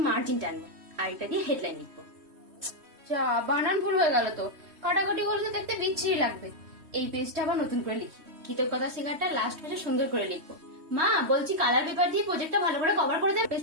মার্জিন টানবো, আর এটা দিয়ে হেডলাইন লিখবো। যা, বানান ভুল হয়ে গেল তো। কাটাকাটি করলে তো দেখতে বিচ্ছিরি লাগবে। এই পেজটা আবার নতুন করে লিখি। কৃতজ্ঞতা শিকারটা লাস্ট পেজে সুন্দর করে লিখবো। মা, বলছি কালার পেপার দিয়ে প্রজেক্টটা ভালো করে কভার করে দেবে।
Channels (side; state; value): left; late; 3.1 ms